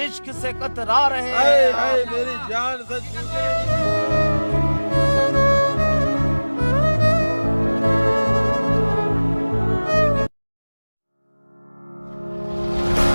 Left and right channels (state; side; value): inverted; both; correlation -1.00